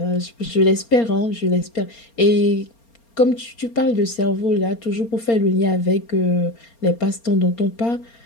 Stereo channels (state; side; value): late; right; 4.3 ms